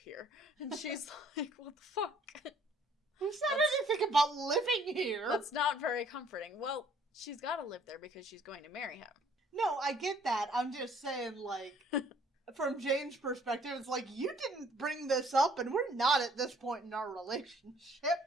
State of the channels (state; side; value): normal; both; correlation 0.60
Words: And she's like, what the fuck? Who said anything about living here? That's not very comforting. Well, she's gotta live there because she's going to marry him. No, I get that. I'm just saying, from Jane's perspective, it's you didn't bring this up and we're not at this point in our relationship.